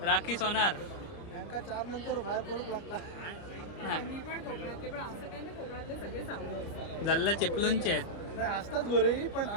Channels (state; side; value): late; right; 30 ms